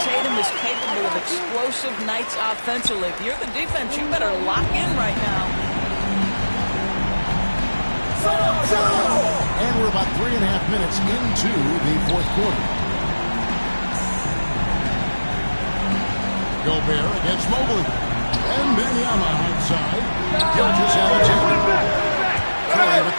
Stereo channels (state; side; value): inverted; both; correlation -1.00